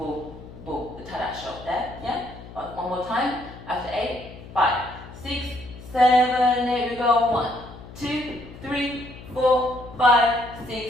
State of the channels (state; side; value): noise; left; hum, 16 dB below the sound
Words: boom, the tarraxo there, yeah? One more time, after 8, 5, 6, 7, 8, we go 1, 2, 3, 4, 5,